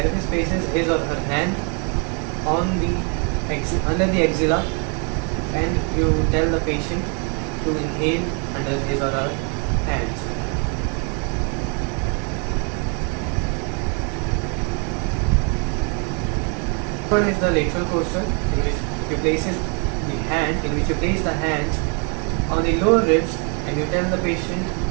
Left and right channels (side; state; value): left; quieter; 37.0 dB